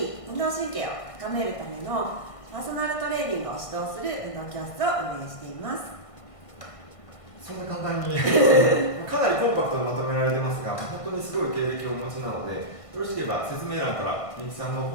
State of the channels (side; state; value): right; late; 1.5 ms